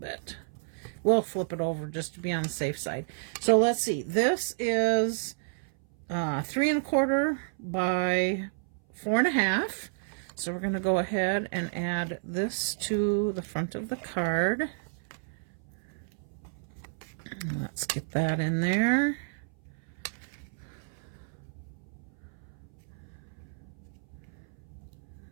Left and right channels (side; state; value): left; silent; 57 dB below the other